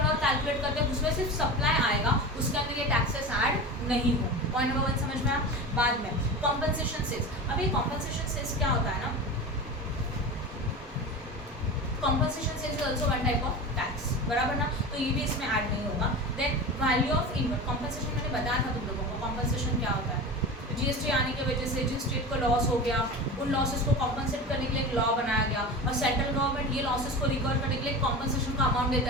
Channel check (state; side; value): normal; both; correlation 0.29